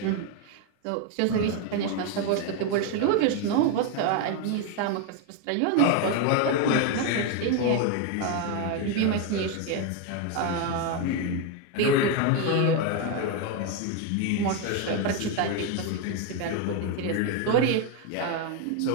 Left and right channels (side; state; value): both; different; correlation 0.02